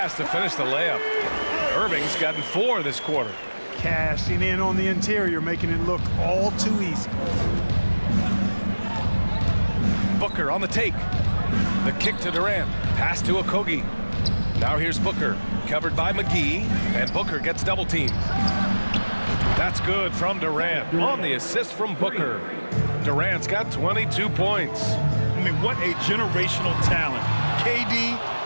to finish the layup. Irving's gotten 4 this quarter. Cashing in on the interior, making it look all too easy. Booker on the take. The kick to Durant. Pass to Okogie. Now here's Booker, covered by McGee, and Booker gets double teamed. That's good from Durant on the assist from Booker. Durant's got 22 points. I mean, what a generational talent.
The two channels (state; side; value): inverted; both; correlation -1.00